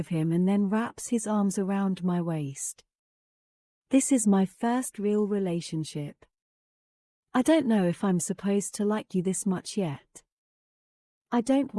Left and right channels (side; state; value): both; identical; correlation 1.00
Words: him and then wraps his arms around my waist. This is my first real relationship. I don't know if I'm supposed to like you this much yet. I don't